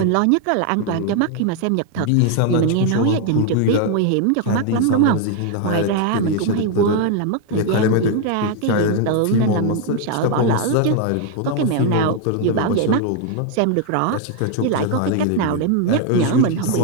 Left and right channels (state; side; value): different; both; correlation 0.01